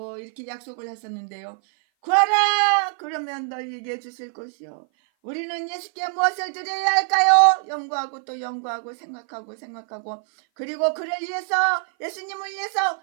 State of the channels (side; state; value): left; silent; 57 dB below the other